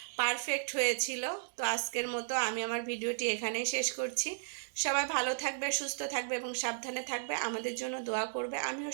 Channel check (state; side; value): silent; left; digital silence